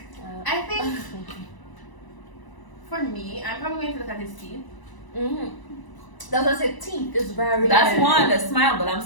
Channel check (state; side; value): late; right; 1.0 ms